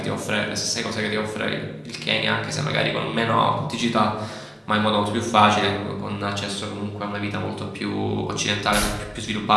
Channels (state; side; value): identical; both; correlation 1.00